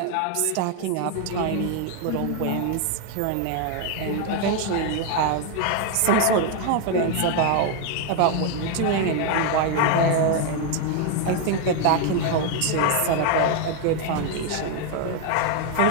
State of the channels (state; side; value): different; both; correlation 0.01